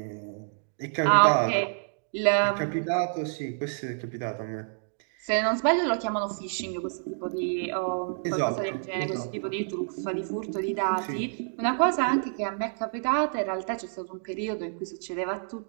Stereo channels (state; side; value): silent; left; digital silence